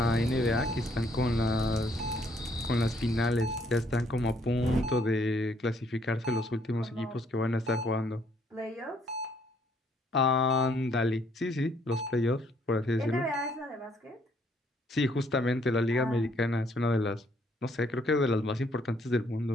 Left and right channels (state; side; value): normal; both; correlation 0.67